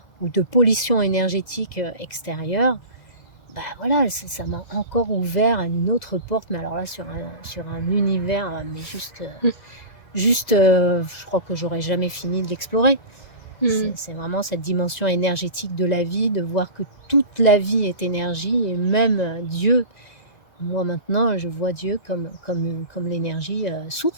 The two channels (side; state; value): right; late; 2.0 ms